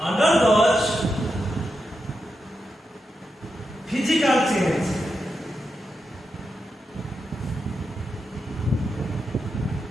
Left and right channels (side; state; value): both; normal; correlation 0.87